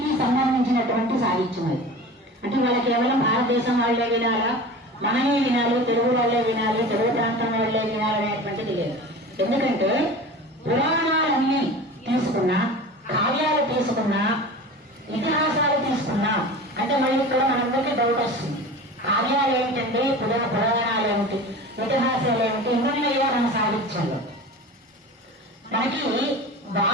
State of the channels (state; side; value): normal; both; correlation 0.35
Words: సంబంధించినటువంటి సాహిత్యం అది. అంటే వాళ్ళ కేవలం భారతదేశం వాళ్ళే వినాలా, మనమే వినాలి, తెలుగు వాళ్ళే వినాలి, తెలుగు ప్రాంతం వాళ్ళే వినాలి అనేటువంటిది లేదు. ఎందుకంటే పురాణాలన్నీ తీసుకున్నా, కావ్యాలు తీసుకున్నా, ఇతిహాసాలు తీసుకున్నా అంటే మళ్ళీ ఇక్కడ మనందరికీ డౌట్ వస్తుంది. కావ్యాలు ఏమిటండి, పురాణాలు ఏమిటి, ఇతిహాసాలు ఏమిటి, ఇందులో మన సాహిత్యంలో మనకి